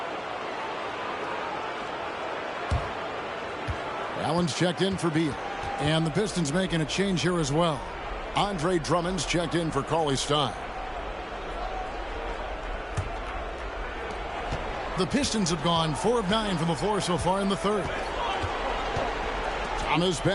Allen's checked in for Beal. And the Pistons making a change here as well. Andre Drummond's checked in for Cauley-Stein. The Pistons have gone 4 of 9 from the floor so far in the third. Thomas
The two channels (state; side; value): identical; both; correlation 1.00